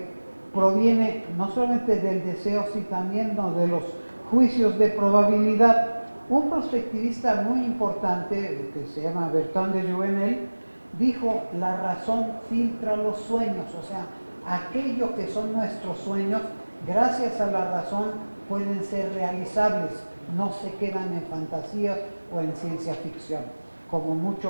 proviene no solamente del deseo, sino también de los juicios de probabilidad. Un prospectivista muy importante, que se llama Bertrand de Jouvenel, dijo: la razón filtra los sueños, o sea, aquello que son nuestros sueños, gracias a la razón pueden ser realizables, no se quedan en fantasías o en ciencia ficción, como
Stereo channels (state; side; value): inverted; both; correlation -1.00